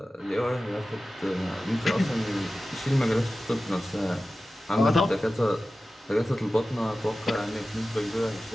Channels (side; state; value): both; normal; correlation 0.95